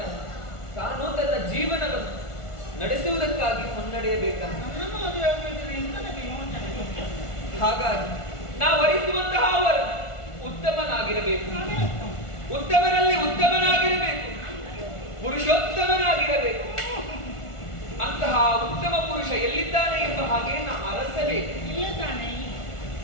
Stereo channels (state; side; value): late; right; 1.4 ms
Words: ತಾನು ತನ್ನ ಜೀವನವನ್ನು ನಡೆಸುವುದಕ್ಕಾಗಿ ಮುನ್ನಡೆಯಬೇಕಂತ. ಹಾಗಾಗಿ ನಾವು ವರಿಸುವಂತಹ ಅವರು ಉತ್ತಮನಾಗಿರಬೇಕು, ಉತ್ತಮರಲ್ಲಿ ಉತ್ತಮನಾಗಿರಬೇಕು, ಪುರುಷೋತ್ತಮನಾಗಿರಬೇಕು. ಅಂತಹ ಉತ್ತಮ ಪುರುಷ ಎಲ್ಲಿದ್ದಾನೆ ಎಂಬ ಹಾಗೆ ನಾವು ಅರಸಬೇಕು.